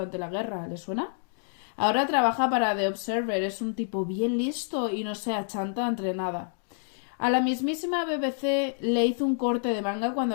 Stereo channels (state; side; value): silent; right; digital silence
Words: la guerra. ¿Le suena? Ahora trabaja para The Observer, es un tipo bien listo y no se achanta entre nada. A la mismísima BBC le hizo un corte de manga